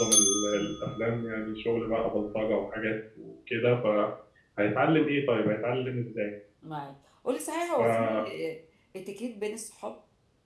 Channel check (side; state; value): both; identical; correlation 1.00